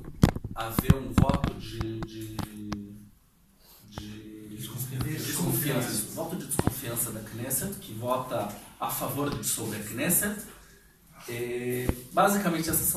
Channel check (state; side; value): identical; both; correlation 1.00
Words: haver um voto de desconfiança. Voto de desconfiança da Knesset, que vota a favor de dissolver a Knesset. Basicamente, essas